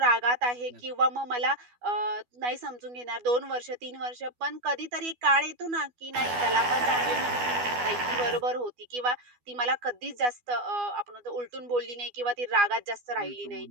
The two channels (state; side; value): late; left; 12 ms